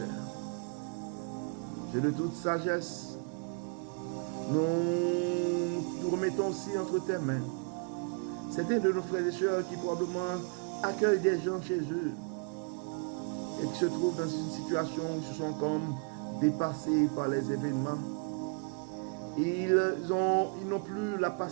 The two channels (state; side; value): quieter; left; 39.3 dB